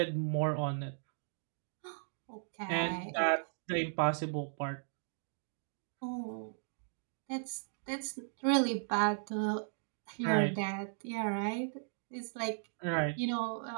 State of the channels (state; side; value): silent; left; digital silence